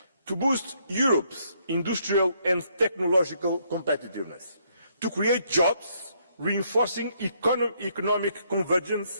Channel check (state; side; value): inverted; both; correlation -0.71